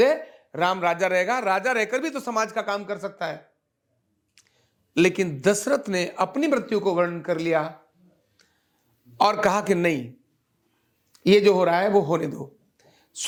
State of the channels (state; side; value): identical; both; correlation 1.00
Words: राम राजा रहेगा, राजा रहकर भी तो समाज का काम कर सकता है। लेकिन दशरथ ने अपनी मृत्यु को वर्णन कर लिया और कहा कि नहीं, ये जो हो रहा है वो होने दो।